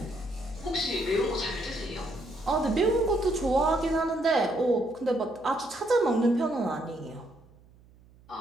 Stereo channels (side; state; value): right; noise; hum, 27 dB below the sound